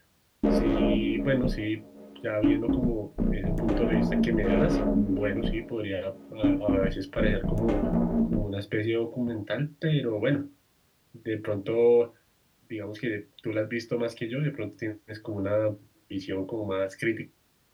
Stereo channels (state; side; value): identical; both; correlation 1.00